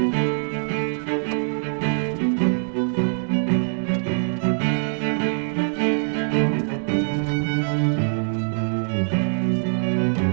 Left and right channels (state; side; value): silent; left; digital silence